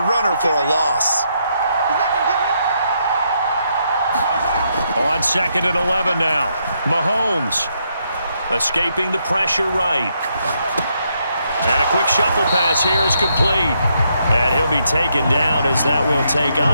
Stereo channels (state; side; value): inverted; both; correlation -0.77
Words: runner for a loss. On 2nd and 11 now. Mahomes escaping the pressure right. And a quick shuffle pass here is complete. And he'll be taken down as that will take